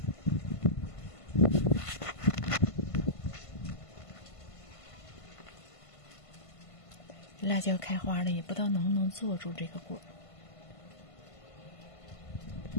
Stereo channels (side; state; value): right; late; 1.5 ms